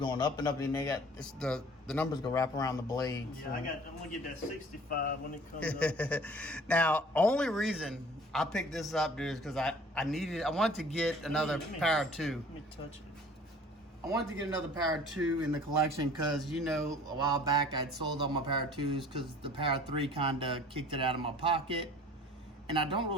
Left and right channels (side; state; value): both; normal; correlation 0.49